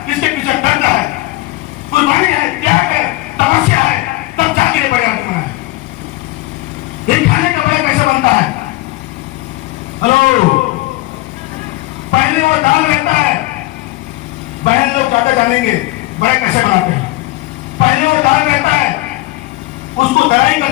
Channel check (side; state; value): right; quieter; 19.6 dB